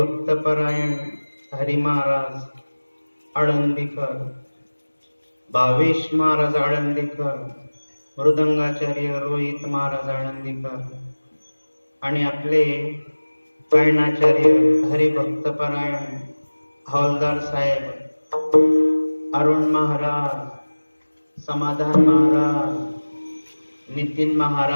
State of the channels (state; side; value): inverted; both; correlation -1.00